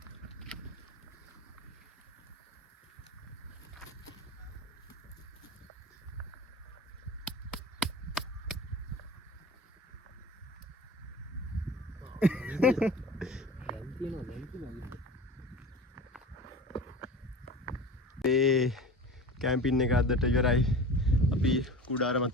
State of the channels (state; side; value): normal; both; correlation 0.36